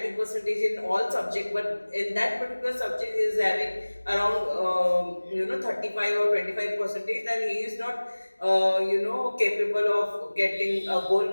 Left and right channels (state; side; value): inverted; both; correlation -1.00